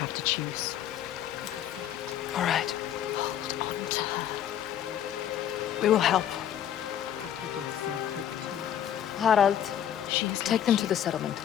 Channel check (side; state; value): right; quieter; 10.3 dB